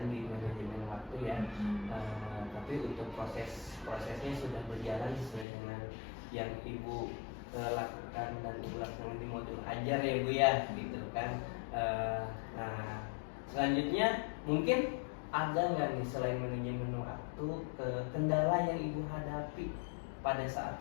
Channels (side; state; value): right; drops out; at 5.5 s